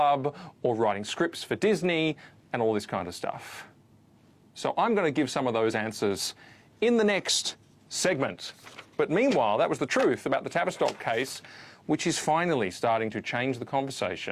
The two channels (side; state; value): both; identical; correlation 1.00